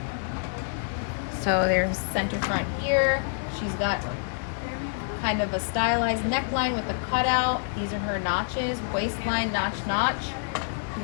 So there's center front here. She's got kind of a stylized neckline with a cutout. These are her notches, waistline, notch. You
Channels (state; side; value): silent; right; digital silence